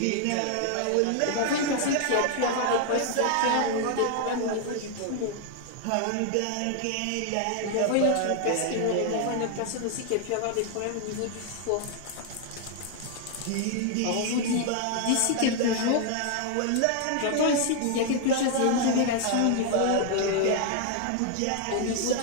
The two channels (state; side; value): different; both; correlation 0.00